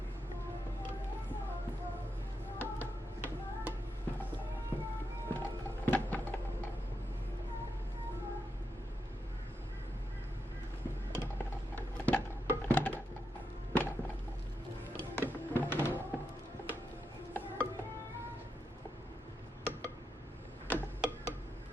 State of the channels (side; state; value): both; normal; correlation 0.85